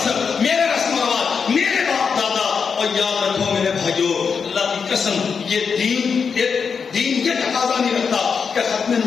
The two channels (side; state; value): right; quieter; 5.9 dB